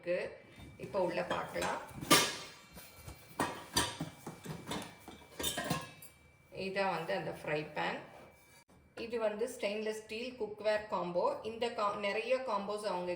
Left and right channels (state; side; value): identical; both; correlation 1.00